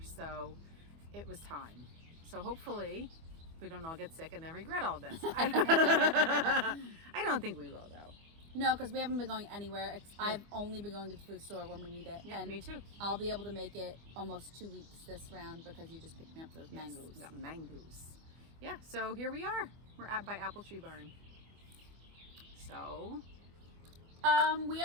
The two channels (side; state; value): left; late; 24 ms